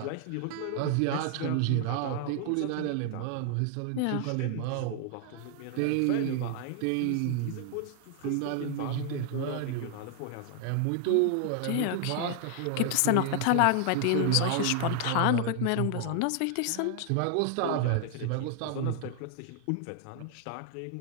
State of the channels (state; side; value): different; both; correlation 0.00